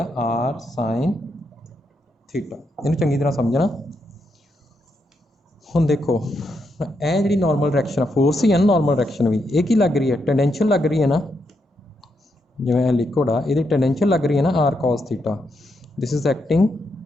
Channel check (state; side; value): normal; both; correlation 0.81